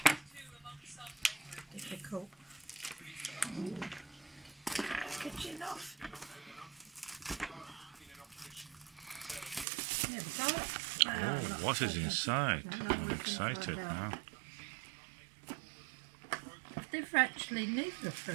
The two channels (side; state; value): left; drops out; at 9.7 s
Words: Difficult. Kitchen off. There we go. Oh, what is inside? I'm excited now. They've actually neither of